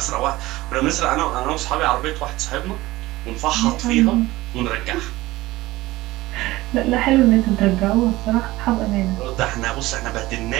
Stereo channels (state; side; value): quieter; left; 18.3 dB